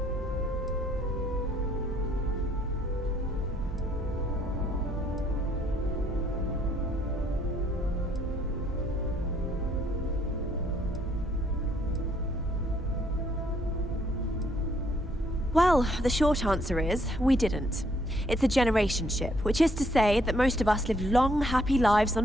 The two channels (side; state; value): both; normal; correlation 0.68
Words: Well, the short answer is, we didn't. It's a generation ship, which is to say that most of us lived long, happy lives